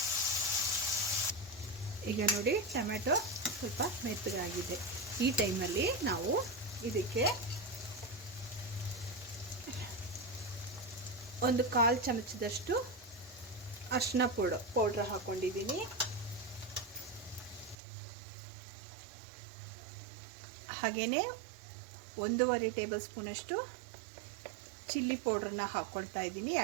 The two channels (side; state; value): left; drops out; at 17.8 s